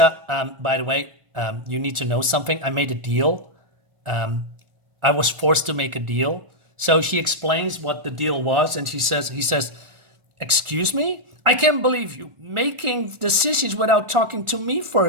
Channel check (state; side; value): late; left; 1.4 ms